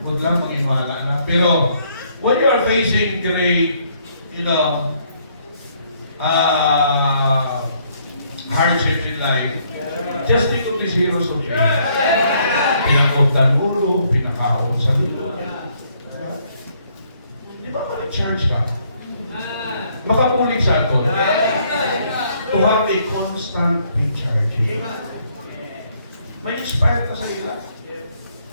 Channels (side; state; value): both; inverted; correlation -0.68